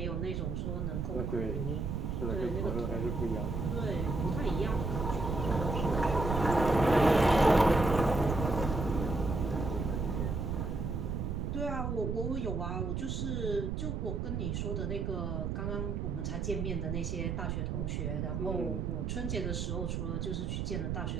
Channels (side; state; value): right; noise; rumble, 1 dB below the sound